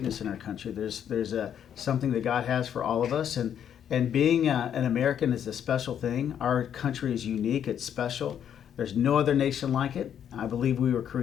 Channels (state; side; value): quieter; right; 9.2 dB